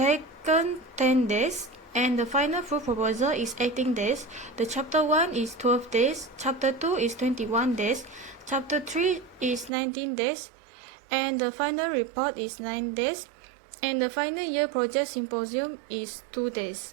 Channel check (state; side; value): drops out; left; at 9.7 s